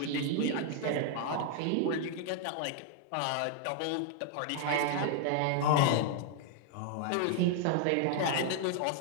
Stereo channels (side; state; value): both; different; correlation 0.00